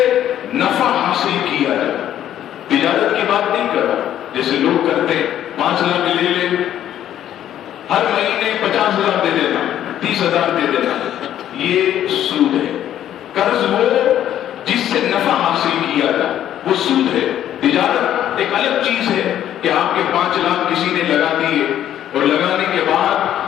نفع حاصل کیا جائے، تجارت کی بات نہیں کر رہا جیسے لوگ کرتے ہیں 5 لاکھ لے لے، ہر مہینے 50,000 دے دینا، 30,000 دے دینا، یہ سود ہے۔ قرض وہ جس سے نفع حاصل کیا جائے وہ سود ہے۔ تجارت ایک الگ چیز ہے کہ آپ کے 5 لاکھ کسی نے لگا دیے اور لگانے کے بعد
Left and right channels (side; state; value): right; quieter; 11.3 dB